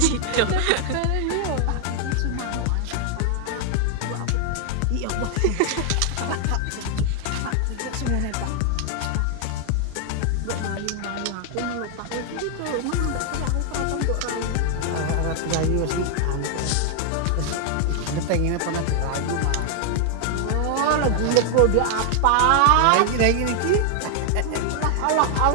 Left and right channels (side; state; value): both; different; correlation 0.00